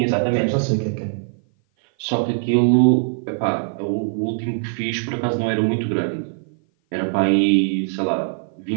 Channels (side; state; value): left; silent; 56 dB below the other